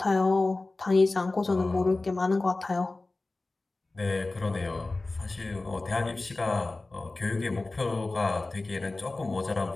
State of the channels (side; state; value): right; quieter; 3.2 dB